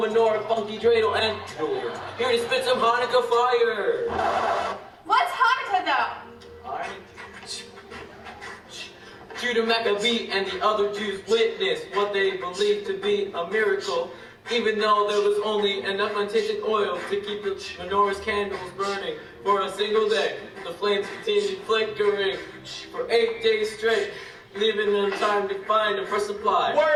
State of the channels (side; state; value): both; identical; correlation 1.00